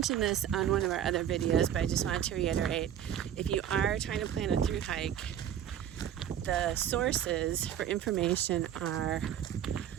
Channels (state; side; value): quieter; left; 10.0 dB